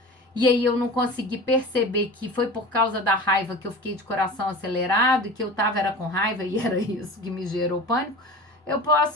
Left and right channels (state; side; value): normal; both; correlation 0.35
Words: e aí eu não consegui perceber que foi por causa da raiva que eu fiquei de coração acelerado e que eu tava era com raiva e era isso que me gerou pânico, eu